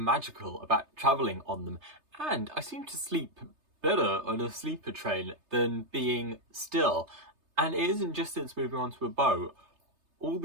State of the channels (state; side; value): late; left; 3.3 ms